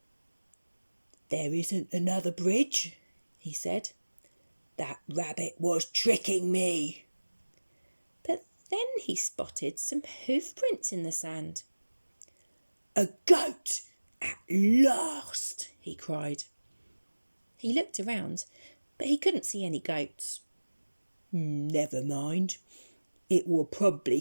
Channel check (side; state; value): both; inverted; correlation -1.00